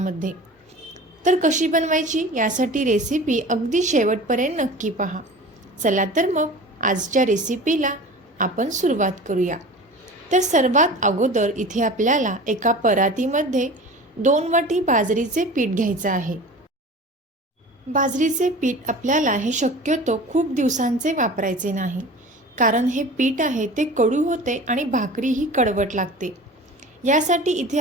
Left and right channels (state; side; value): normal; both; correlation 0.38